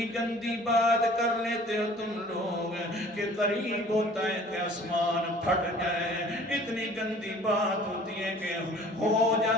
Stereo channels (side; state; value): both; normal; correlation 0.50